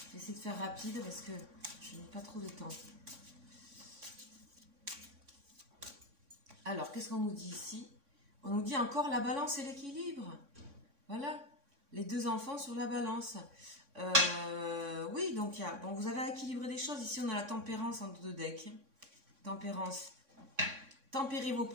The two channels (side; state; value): left; late; 3.6 ms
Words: vais essayer de faire rapide parce que je n'ai pas trop de temps. Alors, qu'est-ce qu'on nous dit ici? On nous dit encore la balance et l'équilibre. Voilà, les deux enfants sur la balance. Oui, donc bon, vous avez équilibré des choses. Ici, on a la tempérance en deux decks. Tempérance. Tempérez vos